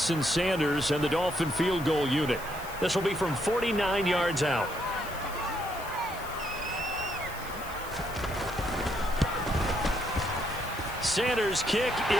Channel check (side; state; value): left; noise; hiss, 16 dB below the sound